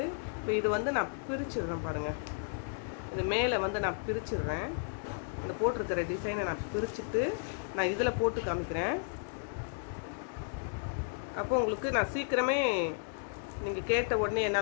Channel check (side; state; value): right; silent; digital silence